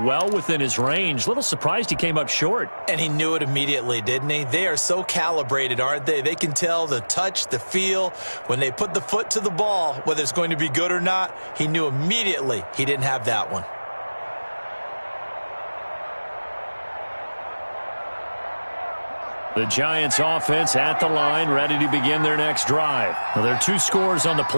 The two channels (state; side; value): inverted; both; correlation -1.00